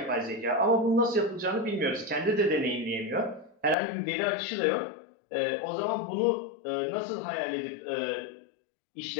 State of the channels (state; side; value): drops out; right; at 3.8 s